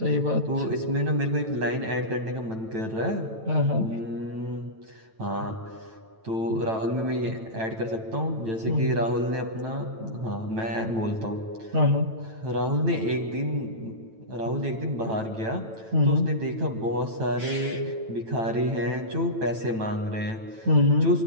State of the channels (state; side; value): late; left; 9.0 ms